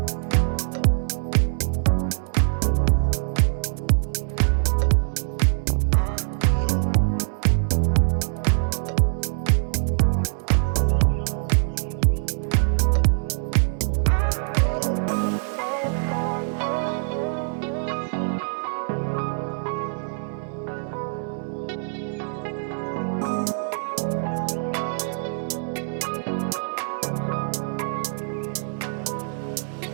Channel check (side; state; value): left; silent; 62 dB below the other